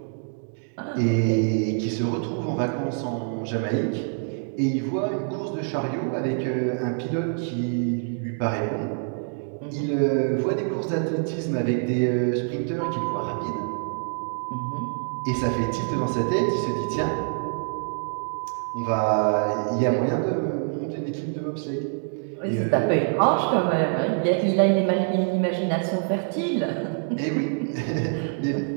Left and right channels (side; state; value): left; silent; 59 dB below the other